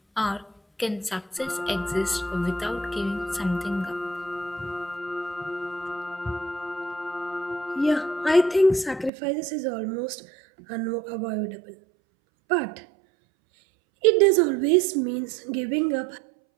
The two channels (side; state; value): left; drops out; at 9.1 s